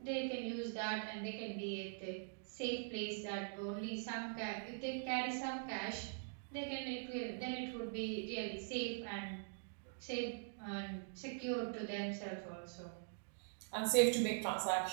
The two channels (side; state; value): left; silent; digital silence